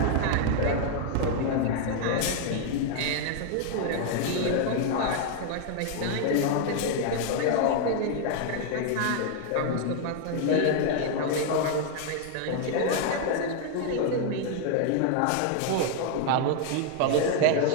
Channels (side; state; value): both; different; correlation 0.00